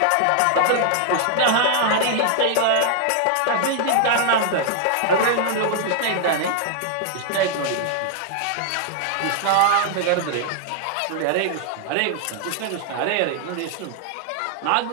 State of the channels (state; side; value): different; both; correlation 0.00